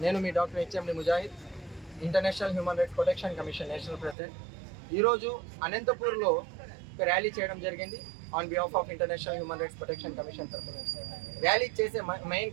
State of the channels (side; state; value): left; drops out; at 4.2 s